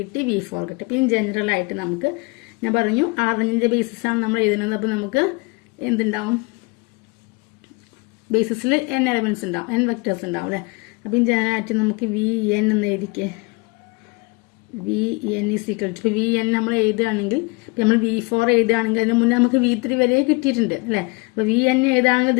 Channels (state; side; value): quieter; right; 27.8 dB